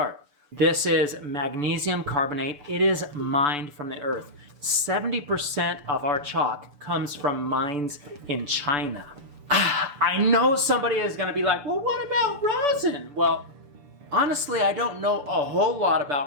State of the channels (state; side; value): late; left; 6.9 ms